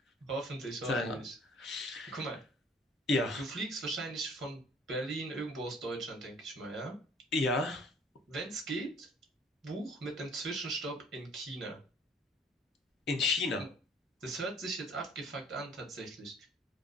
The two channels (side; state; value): both; normal; correlation 0.54